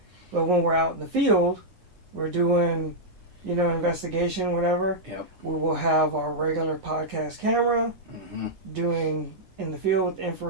But when we're out in the field, we're doing, investigation, whatever, yep. We will have our regular podcast camera, doing in the field with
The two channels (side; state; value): left; late; 9.8 ms